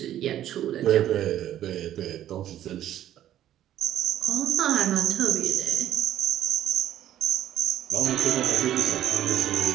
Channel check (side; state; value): left; quieter; 12.0 dB